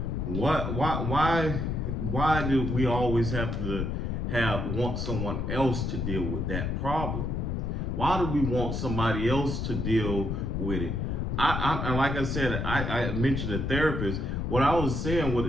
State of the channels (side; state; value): left; noise; rumble, 1 dB below the sound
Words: Why do we always have to want someone else to deal with that problem? Why do we want somebody else to deal with it? I like I said, I mentioned a therapist. What I was saying with